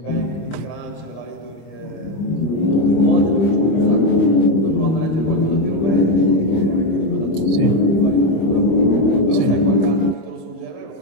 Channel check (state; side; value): late; right; 25 ms